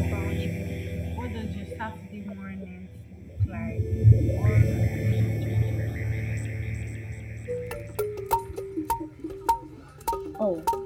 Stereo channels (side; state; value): both; identical; correlation 1.00